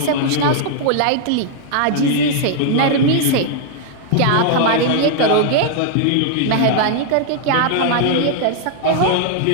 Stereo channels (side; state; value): both; different; correlation -0.01